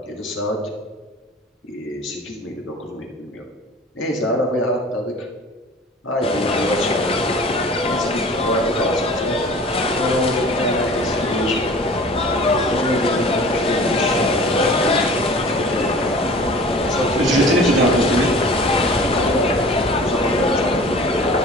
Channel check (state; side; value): normal; both; correlation 0.43